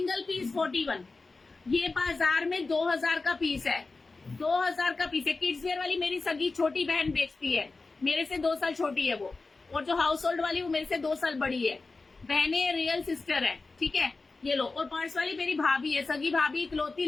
पीस 41। ये बाजार में 2000 का पीस है, 2000 का पीस है। किड्स वेयर वाली मेरी सगी छोटी बहन बेचती है, मेरे से 2 साल छोटी है वो, और जो हाउस होल्ड वाली वो मेरे से 2 साल बड़ी है। बहनें रियल सिस्टर है, ठीक है। ये लो, और पर्स वाली मेरी भाभी है, सगी भाभी, इकलौती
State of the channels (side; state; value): right; quieter; 3.7 dB